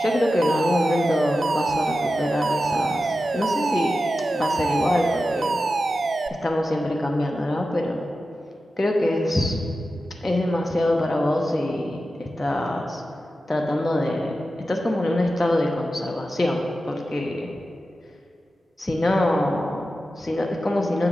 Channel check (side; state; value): both; normal; correlation 0.92